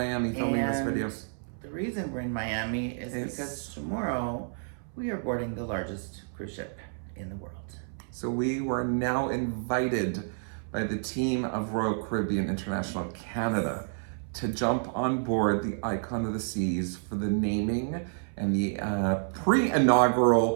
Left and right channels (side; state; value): left; silent; 58 dB below the other